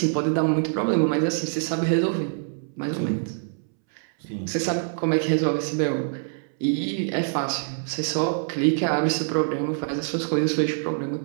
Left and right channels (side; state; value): left; silent; 62 dB below the other